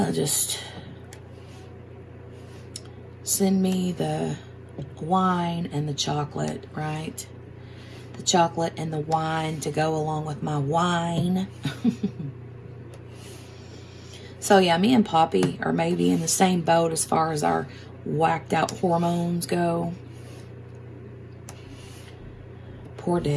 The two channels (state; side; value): identical; both; correlation 1.00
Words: send me the wine and the chocolate, right? The chocolate and the wine to go along with my wine. So yeah, me and Poppy are maybe in the same boat as far as our whacked out hormones go. Poor